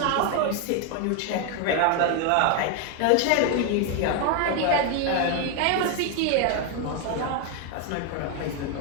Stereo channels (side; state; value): both; different; correlation 0.01